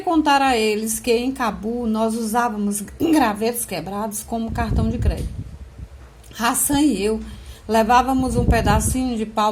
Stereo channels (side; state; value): both; identical; correlation 1.00